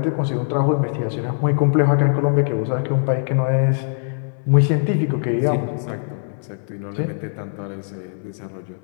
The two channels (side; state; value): right; silent; digital silence